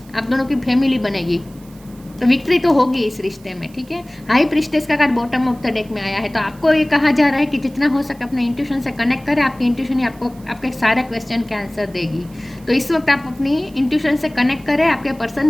आप दोनों की फैमिली बनेगी। तो विक्ट्री तो होगी इस रिश्ते में, ठीक है। हाई प्रिस्टेस का card bottom of the deck में आया है। तो आपको ये कहा जा रहा है कि जितना हो सके अपने इंट्यूशन से कनेक्ट करें। आपकी इंट्यूशन ही आपको आपके सारे क्वेश्चन के आंसर देगी। तो इस वक्त आप अपनी इंट्यूशन से कनेक्ट करें। आपके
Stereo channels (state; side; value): noise; right; hiss, 26 dB below the sound